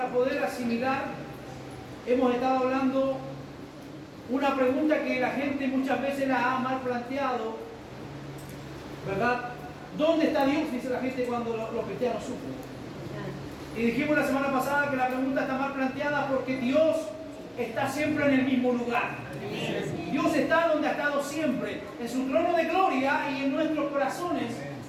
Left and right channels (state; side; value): identical; both; correlation 1.00